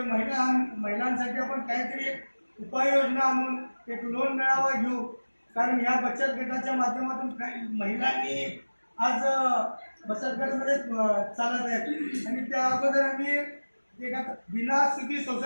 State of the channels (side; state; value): both; inverted; correlation -1.00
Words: महिलांसाठी आपण काहीतरी उपाययोजना आणून एक लोन मेळावा घेऊ, कारण या बचत गटाच्या माध्यमातून काही महिलांनी आज बचत गटामध्ये चालत आहेत आणि त्या अगोदर आम्ही एक बिना सुधी